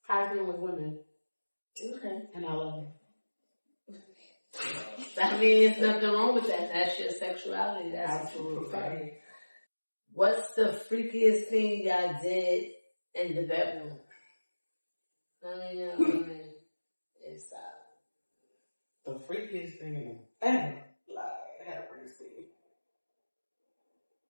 has been with women. Okay. And I love it. I mean, there's nothing wrong with that. That's your sexuality. That's Absolutely. Absolutely. What's the freakiest thing y'all did in the bedroom? I mean, it's the freakiest thing ever. Like, have mercy.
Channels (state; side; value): inverted; both; correlation -1.00